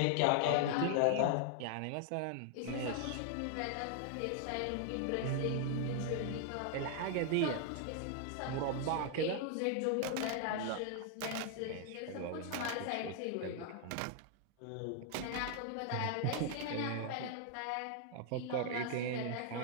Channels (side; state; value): both; different; correlation 0.00